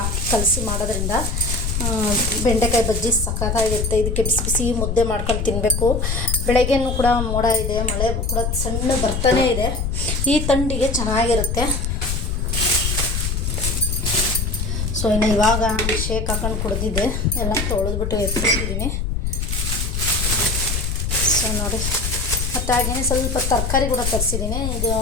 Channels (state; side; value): noise; left; rumble, 1 dB below the sound